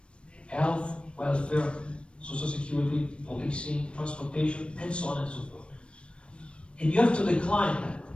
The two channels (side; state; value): right; late; 0.058 ms